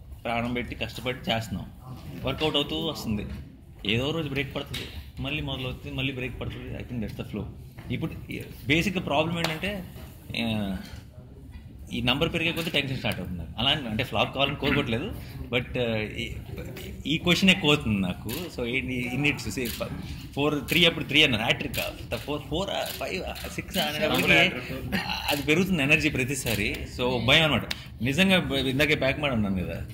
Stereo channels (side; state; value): both; identical; correlation 1.00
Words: ప్రాణం పెట్టి కష్టపడి చేస్తున్నాం. వర్కౌట్ అవుతూ వస్తుంది. ఏదో రోజు బ్రేక్ పడుతుంది, మళ్ళీ మొదలవుతుంది, మళ్ళీ బ్రేక్ పడుతుంది. I think that's the flow. ఇప్పుడు బేసిక్గా ప్రాబ్లం ఏంటంటే ఈ నంబర్ పెరిగే కొద్దీ టెన్షన్ స్టార్ట్ అవుతుంది. అలా అంటే ఫ్లాప్ కావాలని కోరుకోవట్లేదు, బట్ ఈ క్వశ్చన్ ఎక్కువ అవుతుంది నాకు. సో ఇన్నిట్స్ 4-3 అప్పుడు 3 అన్నారు, హ్యాట్రిక్ 4, 5, 6 అనేటప్పటికి అది పెరుగుతుంది ఎనర్జీ ప్రతిసారి. సో భయం అనమాట. నిజంగా ఇందాకే బ్యాక్ మాట ఉన్నాను కదా,